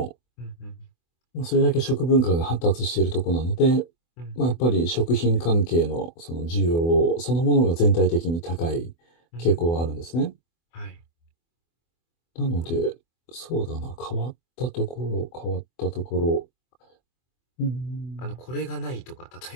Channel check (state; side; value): late; right; 24 ms